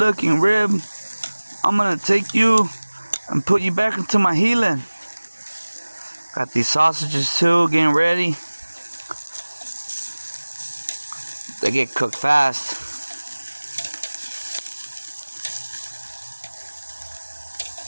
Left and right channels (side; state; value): both; inverted; correlation -1.00